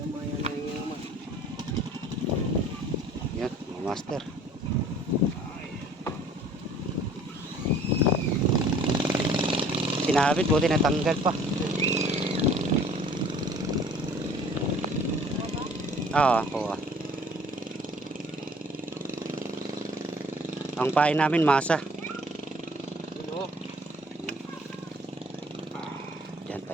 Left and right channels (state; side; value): normal; both; correlation 0.53